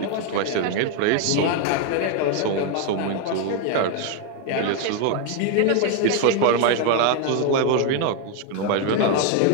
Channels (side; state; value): both; different; correlation 0.01